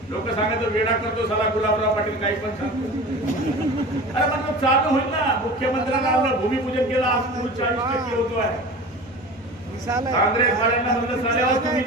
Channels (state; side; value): normal; both; correlation 0.35